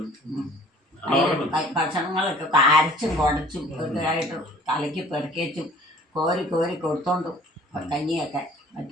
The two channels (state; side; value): normal; both; correlation 0.52